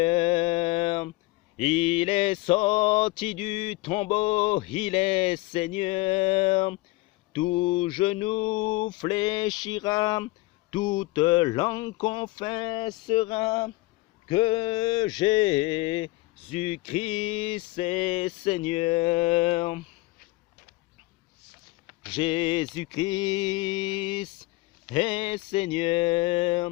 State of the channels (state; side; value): quieter; right; 21.1 dB